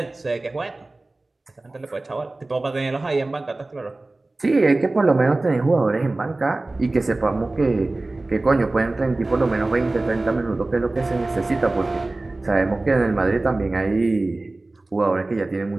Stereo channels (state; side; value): quieter; left; 3.0 dB